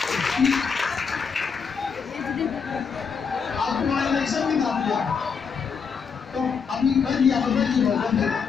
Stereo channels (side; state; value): right; quieter; 6.0 dB